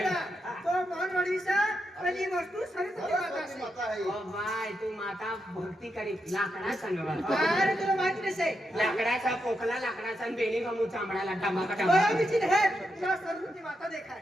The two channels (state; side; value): normal; both; correlation 0.84